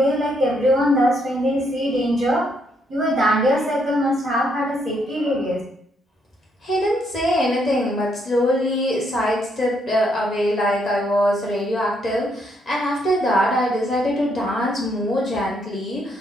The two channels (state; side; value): normal; both; correlation 0.74